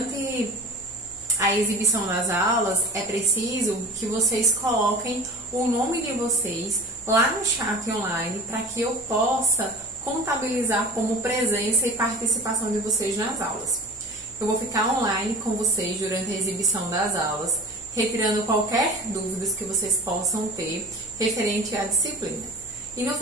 a exibição das aulas é preciso que vocês coloquem o nome de vocês lá no chat online para que eu possa contabilizar como presença e participação de vocês nas aulas. Eu vou ficar online com vocês durante a exibição das aulas, retirando qualquer dúvidas que vocês possam ter referente à disciplina. E no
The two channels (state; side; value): normal; both; correlation 0.38